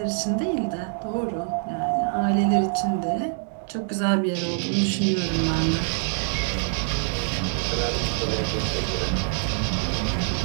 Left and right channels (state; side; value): silent; left; 56 dB below the other